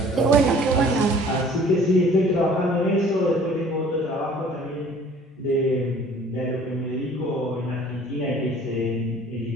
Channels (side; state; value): both; normal; correlation 0.52